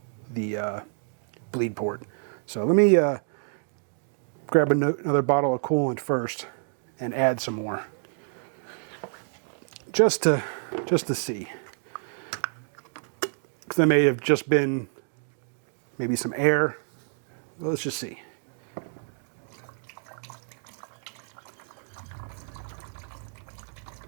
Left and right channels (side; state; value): left; silent; digital silence